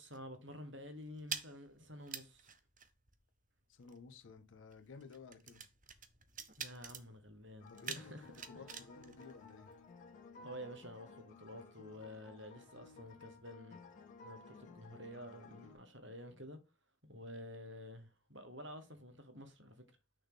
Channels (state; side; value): normal; both; correlation 0.08